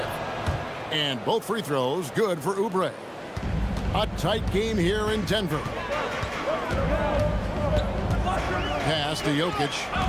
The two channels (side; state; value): both; identical; correlation 1.00